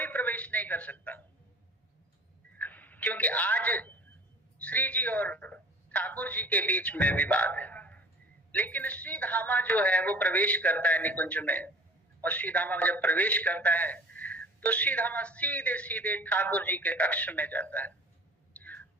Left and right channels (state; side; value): normal; both; correlation 0.45